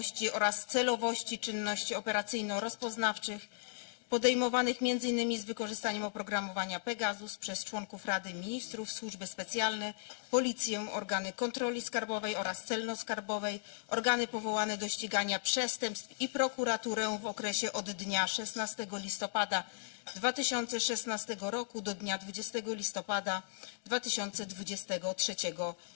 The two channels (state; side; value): silent; right; digital silence